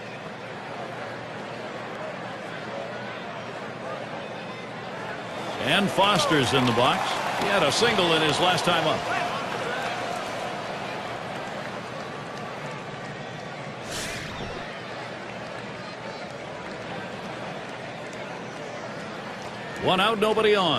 And Foster's in the box. He had a single in his last time up. One out, nobody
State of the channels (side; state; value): both; identical; correlation 1.00